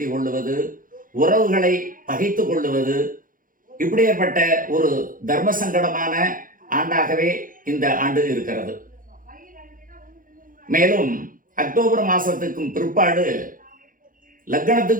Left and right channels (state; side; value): late; left; 0.40 ms